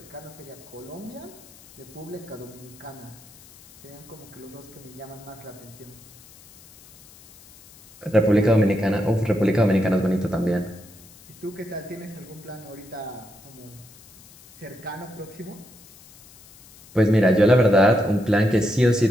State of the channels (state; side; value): noise; left; hiss, 23 dB below the sound